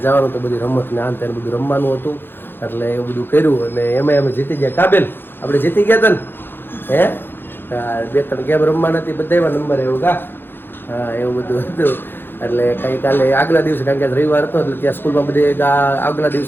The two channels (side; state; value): right; late; 0.10 ms